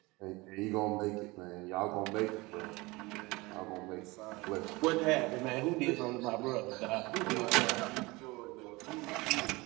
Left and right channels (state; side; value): quieter; left; 23.2 dB